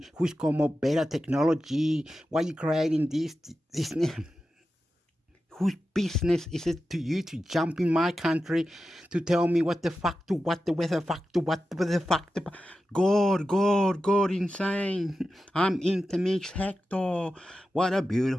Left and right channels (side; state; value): both; normal; correlation 0.92